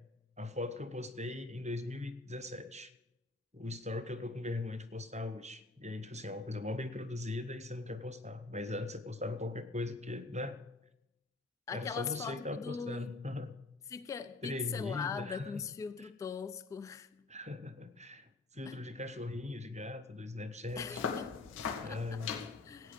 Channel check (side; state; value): right; quieter; 3.2 dB